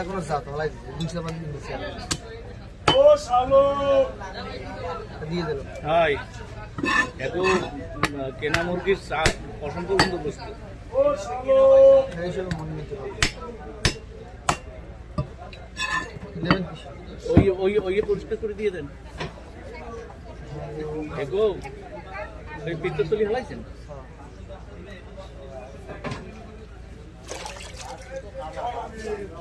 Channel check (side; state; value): both; identical; correlation 1.00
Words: কোনো জাত, হলাই দিচ্ছে 200 পান দিয়েছে, দিয়ে দিল। হাই এত কেনা মুরগির চা পছন্দ কিন্তু বুঝতে এইসব মনে নিতে পারবে। নেবেন কি? ওই ওই ওই পরিষ্কার করে দিয়ে দেন। এগো ওই পিত্তর তলি হলাইছেন?